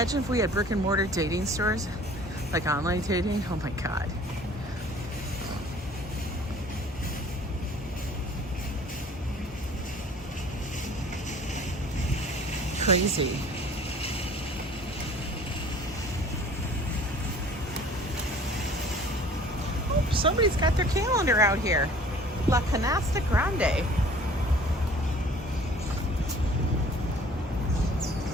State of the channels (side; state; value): both; normal; correlation 0.50